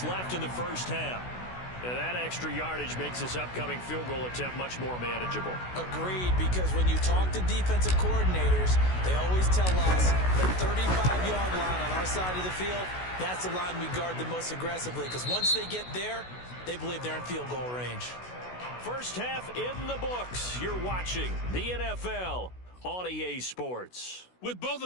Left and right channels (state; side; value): late; right; 16 ms